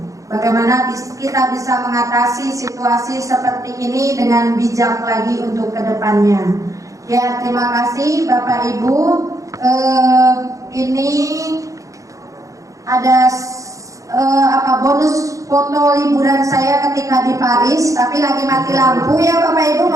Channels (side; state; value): left; late; 0.16 ms